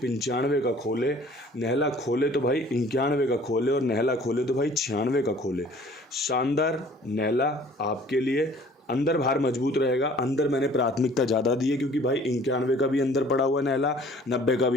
का खोले, नहला खोले तो भाई 91 का खोले, और नहला खोले तो भाई 96 का खोले। शानदार नहला आपके लिए। अंदर बाहर मजबूत रहेगा। अंदर मैंने प्राथमिकता ज़्यादा दी है क्योंकि भाई 91 का भी अंदर पड़ा हुआ है नहला, 90 का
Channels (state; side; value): normal; both; correlation 0.52